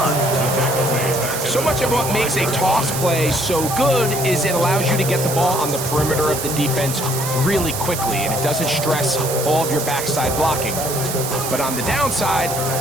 So much of what makes a toss play so good is it allows you to get the ball on the perimeter of the defense really quickly, and it doesn't stress all of your backside blocking. But on the downside,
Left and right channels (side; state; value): right; noise; hiss, 5 dB below the sound